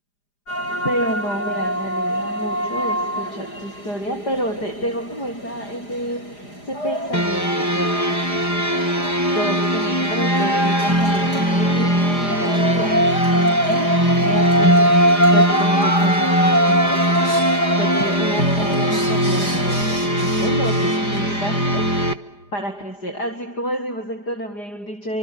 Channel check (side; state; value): right; late; 4.9 ms